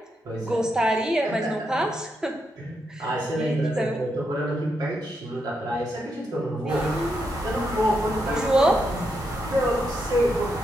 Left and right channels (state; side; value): normal; both; correlation 0.82